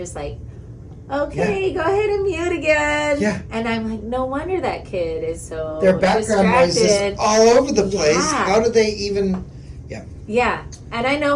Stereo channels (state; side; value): identical; both; correlation 1.00